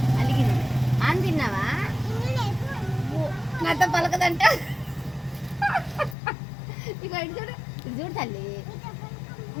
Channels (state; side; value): drops out; right; at 6.2 s